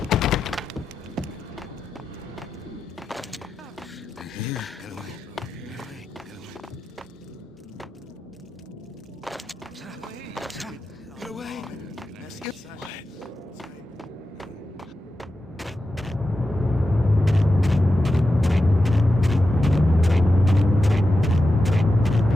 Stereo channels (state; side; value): normal; both; correlation 0.91